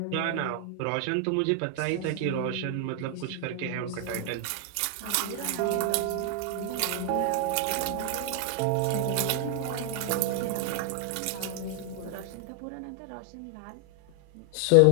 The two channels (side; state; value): both; different; correlation 0.00